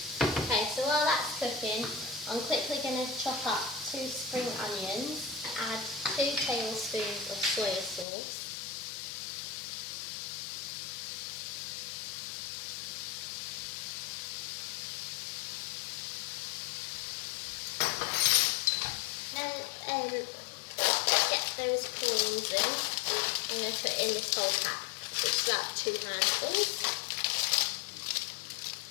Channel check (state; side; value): drops out; right; at 8.1 s